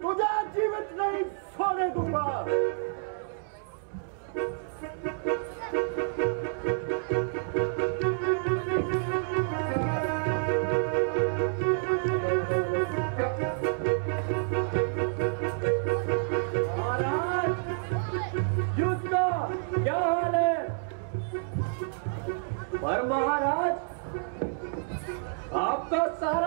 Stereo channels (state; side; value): silent; left; 59 dB below the other